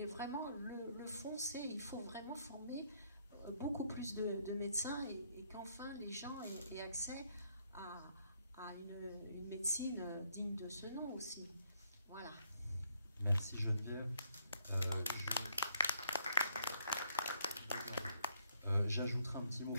vraiment, le fond, c'est il faut vraiment former beaucoup plus de médecins et qu'enfin les gens aient accès à une médecine digne de ce nom aussi. Voilà. Merci Geneviève. J'ajouterai un petit mot,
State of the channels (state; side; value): inverted; both; correlation -0.69